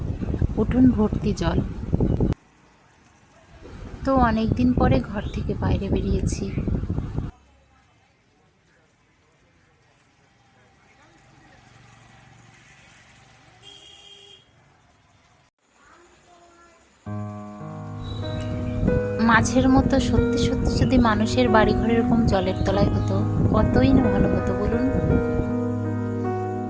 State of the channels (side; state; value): both; identical; correlation 1.00